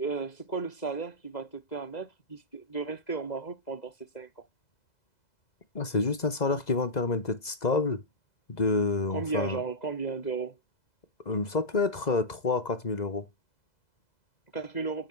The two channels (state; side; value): late; right; 2.0 ms